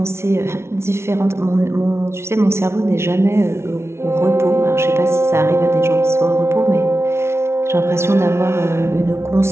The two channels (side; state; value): left; late; 0.13 ms